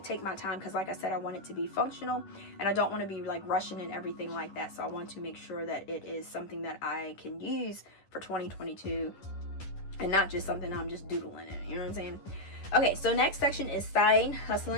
take my time, because like I said, I want it to be functional and I don't want to be like rushing and everything like that. So I want to make sure that it is something that I can use for 2022 and not just something I'm just doodling in, you know what I'm saying? Okay, so next section is side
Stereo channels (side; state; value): right; late; 11 ms